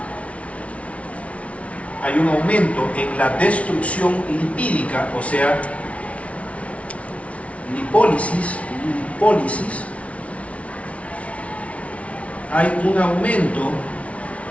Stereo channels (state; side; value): late; right; 0.064 ms